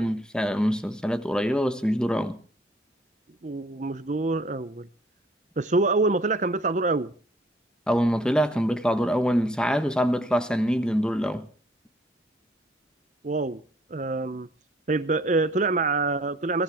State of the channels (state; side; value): normal; both; correlation 0.61